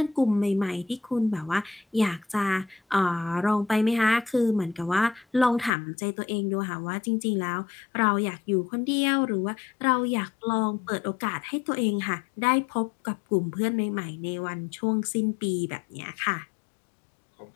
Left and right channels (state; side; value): drops out; right; at 5.7 s